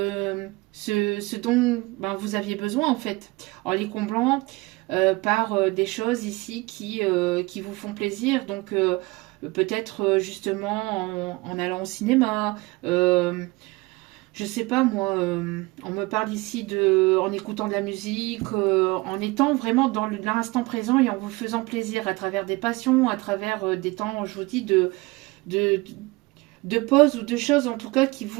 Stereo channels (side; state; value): left; quieter; 23.3 dB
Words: ce dont ben, vous aviez besoin en fait, en les comblant par des choses ici qui vous font plaisir. Donc peut-être justement en allant au cinéma, je sais pas moi, on me parle ici en écoutant de la musique, en étant vraiment dans l'instant présent et en vous faisant plaisir à travers des passions, à travers des temps, je vous dis, de, de pause ou de choses en tout cas qui